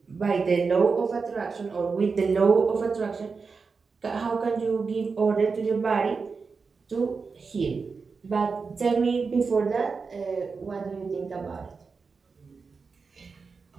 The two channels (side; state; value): left; quieter; 4.9 dB